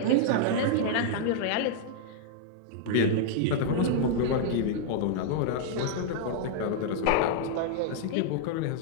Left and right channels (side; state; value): both; different; correlation -0.01